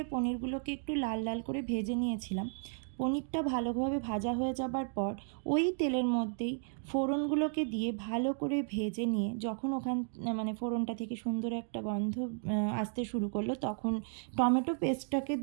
পনিরগুলোকে একটু লাল লাল করে ভেজে নিয়েছিলাম। পনিরটা ভালোভাবে ভাজা হয়ে যাবার পর ওই তেলের মধ্যেই ফোড়নগুলোকে দিয়ে ভালো করে ভেজে নিয়ে যখন ফোড়নটা থেকে সুন্দর একটা গন্ধ আসতে শুরু করলো, তখন টমেটো পেস্টটাকে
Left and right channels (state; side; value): silent; left; 55 dB below the other